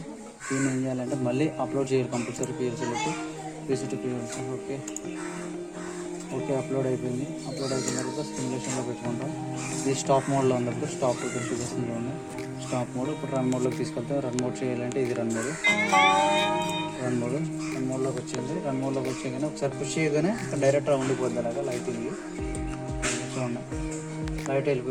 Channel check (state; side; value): identical; both; correlation 1.00